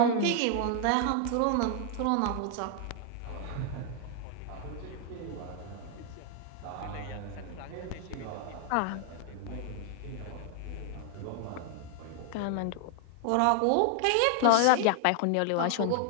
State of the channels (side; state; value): both; different; correlation 0.00